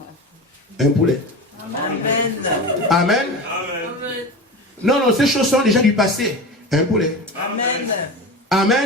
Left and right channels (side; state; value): both; normal; correlation 0.28